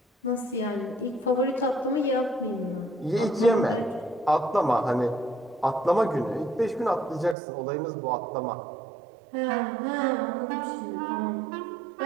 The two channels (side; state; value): left; drops out; at 7.4 s